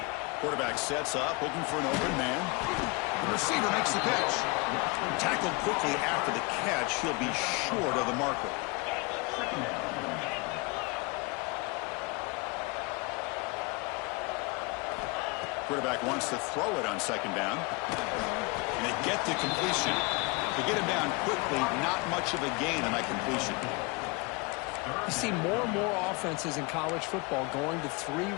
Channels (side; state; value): right; quieter; 27.8 dB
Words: Quarterback sets up, looking for an open man. The receiver makes the catch. Tackled quickly after the catch. He'll be short of the marker. Quarterback wants to throw it on 2nd down. And they get the completion. To get him down quickly, not much of a gain on that completion. You see more and more offenses in college football going to 3